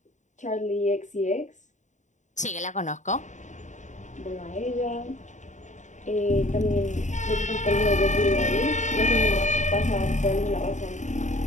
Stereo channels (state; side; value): late; right; 0.35 ms